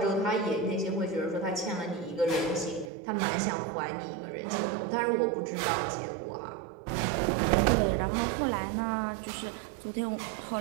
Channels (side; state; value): left; drops out; at 2.9 s